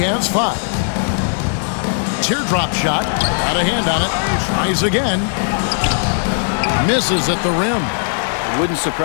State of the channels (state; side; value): silent; right; digital silence